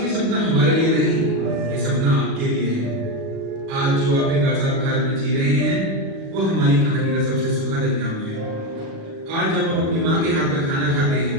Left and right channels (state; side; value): late; left; 37 ms